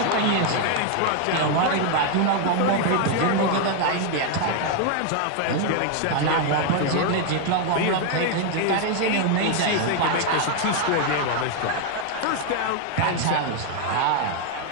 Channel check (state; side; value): different; both; correlation 0.00